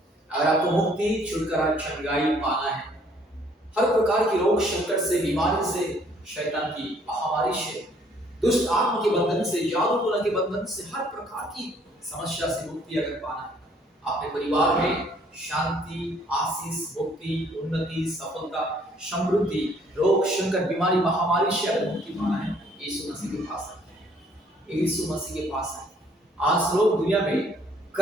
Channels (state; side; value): normal; both; correlation 0.62